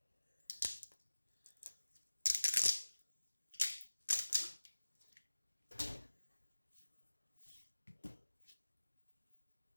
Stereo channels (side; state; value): both; inverted; correlation -1.00